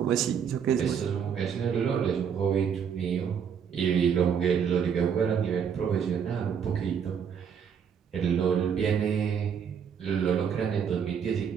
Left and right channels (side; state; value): left; quieter; 7.5 dB